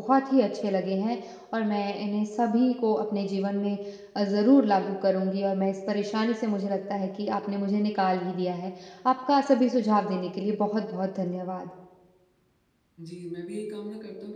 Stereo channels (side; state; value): both; identical; correlation 1.00